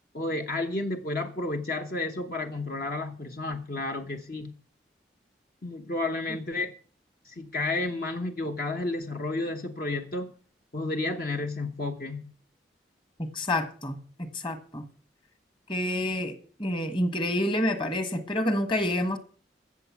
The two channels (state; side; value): normal; both; correlation 0.55